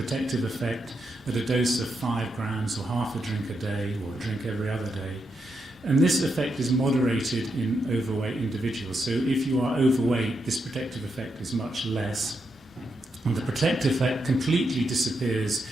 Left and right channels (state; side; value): normal; both; correlation 0.83